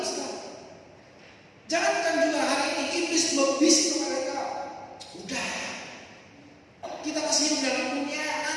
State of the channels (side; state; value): both; identical; correlation 1.00